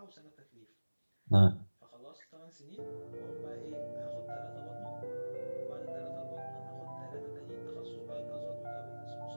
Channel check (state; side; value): inverted; both; correlation -1.00